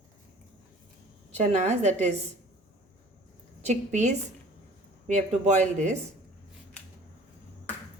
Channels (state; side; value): normal; both; correlation 0.48